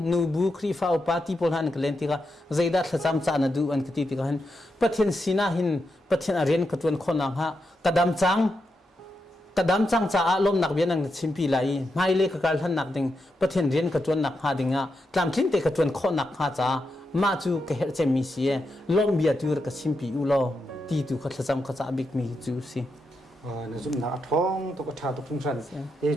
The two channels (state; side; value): normal; both; correlation 0.85